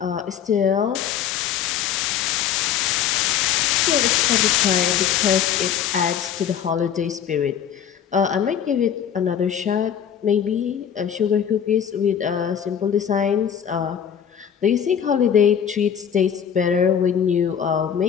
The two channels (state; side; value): quieter; right; 8.7 dB